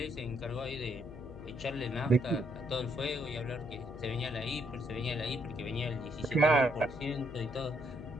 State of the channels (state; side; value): noise; left; hum, 14 dB below the sound